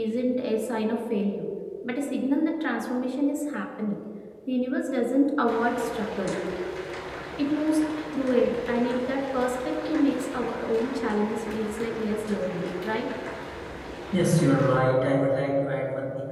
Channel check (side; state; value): both; identical; correlation 1.00